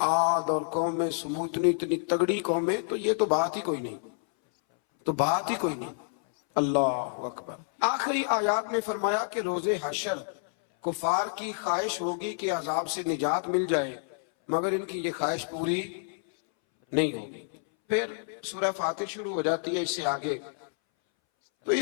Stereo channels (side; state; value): right; silent; 59 dB below the other